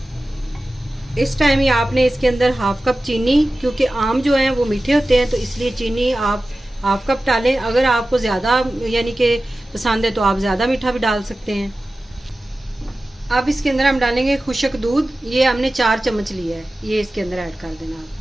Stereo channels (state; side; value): normal; both; correlation 0.95